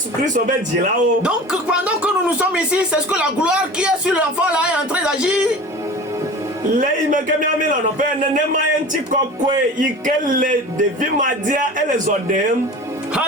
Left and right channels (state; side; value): normal; both; correlation 0.37